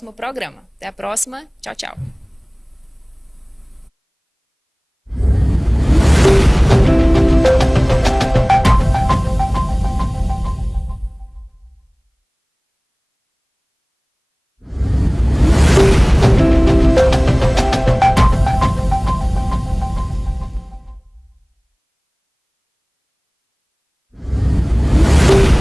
programa. Até a próxima. Tchau, tchau.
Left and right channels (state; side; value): identical; both; correlation 1.00